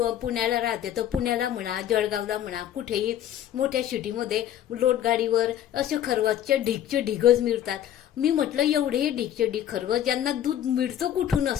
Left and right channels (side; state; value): right; quieter; 11.0 dB